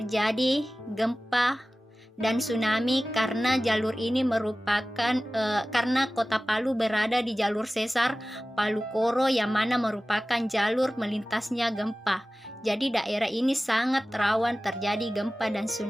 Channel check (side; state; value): both; normal; correlation 0.96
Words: gempa dan tsunami karena jalur ini merupakan karena kota Palu berada di jalur sesar Palu Koro yang mana merupakan jalur melintasnya gempa. Jadi daerah ini sangat rawan terjadi gempa dan